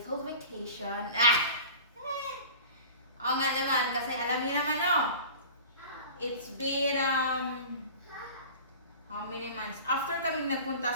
vacation. Oo nga naman, kasi alam niyo naman, it's been, how many months? After kami nagpunta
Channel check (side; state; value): both; inverted; correlation -0.38